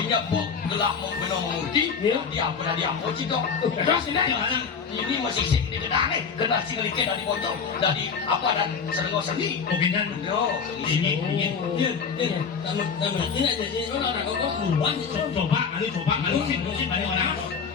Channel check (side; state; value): right; quieter; 6.0 dB